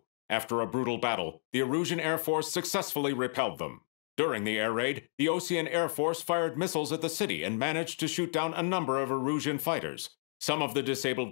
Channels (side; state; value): right; silent; digital silence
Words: After a brutal battle, the Erusian Air Force successfully repelled them. During the air raid, the Osean Air Force fired missiles at the city and managed to shoot down a number of Erusian fighters. Some of the